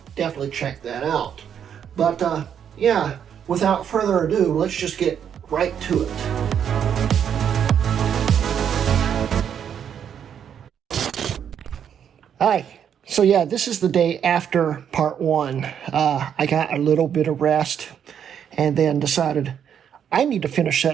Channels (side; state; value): left; quieter; 8.5 dB